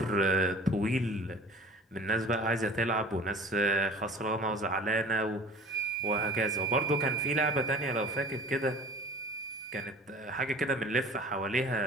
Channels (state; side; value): normal; both; correlation 0.43